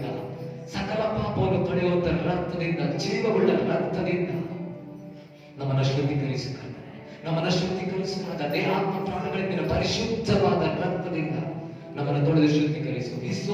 ಸಕಲ ಪಾಪವನ್ನು ತೊಳೆಯುವಂತ ರಕ್ತದಿಂದ, ಜೀವವುಳ್ಳ ರಕ್ತದಿಂದ ನಮ್ಮನ್ನು ಶುದ್ಧೀಕರಿಸು ಕರ್ತನೆ. ನಮ್ಮನ್ನು ಶುದ್ಧೀಕರಿಸುವಾಗ ದೇಹಾತ್ಮ ಪ್ರಾಣಗಳಿಂದ ಪರಿಶುದ್ಧವಾದ ರಕ್ತದಿಂದ ನಮ್ಮನ್ನು ತೊಳೆದು ಶುದ್ಧೀಕರಿಸು.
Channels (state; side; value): identical; both; correlation 1.00